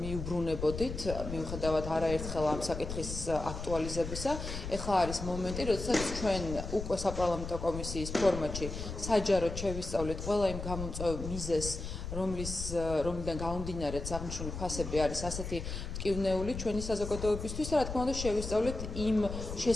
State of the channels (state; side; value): noise; left; rumble, 7 dB below the sound